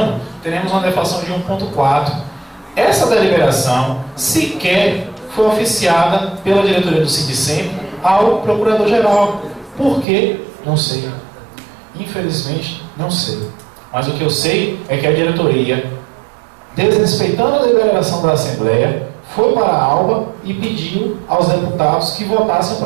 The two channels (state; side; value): drops out; left; at 10.1 s